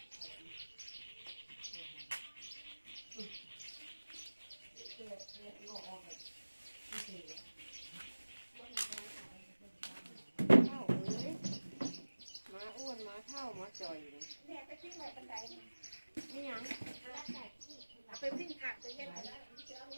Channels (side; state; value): both; inverted; correlation -1.00